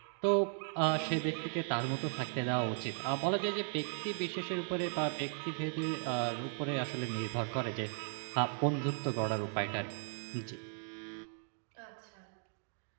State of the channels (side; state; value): left; silent; 53 dB below the other